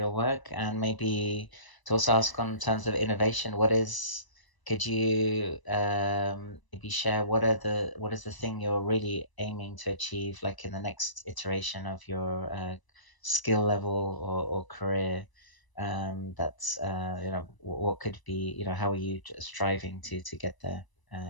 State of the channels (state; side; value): late; right; 1.0 ms